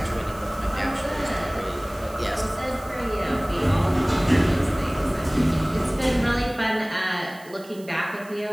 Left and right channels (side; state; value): right; noise; hiss, 22 dB below the sound